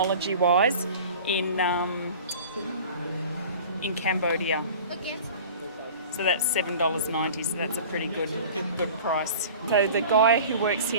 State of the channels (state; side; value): inverted; both; correlation -0.41